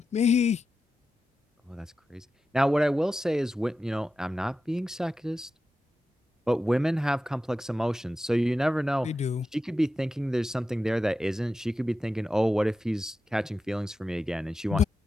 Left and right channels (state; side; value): normal; both; correlation 0.91